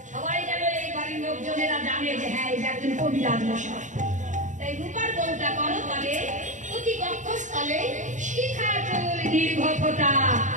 সবাই যেন এই বাড়ির লোকজনেরা জানে যে হ্যাঁ এটা একজন কবিরাজ মশাই। তাই রূপার বউটা করো তবে অতি কক্ষস্থলে শিখা চুল দীর্ঘ ফোঁটা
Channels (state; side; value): late; left; 0.36 ms